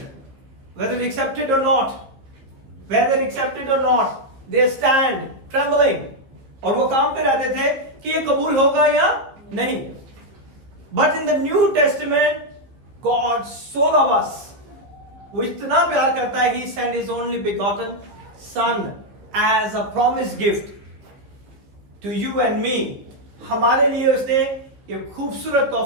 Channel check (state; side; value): late; left; 15 ms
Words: whether they accept it or not. Whether accepted or not, they stand trembling. और वो काम पे रहते थे कि ये कबूल होगा या नहीं. But in the New Testament, God so loves us. वो इतना प्यार करता है, He sent His only begotten Son as a promised gift to you and me. हमारे लिए उसने ये खूबसूरत